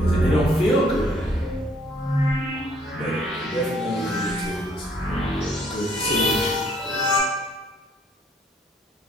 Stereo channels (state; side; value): normal; both; correlation 0.63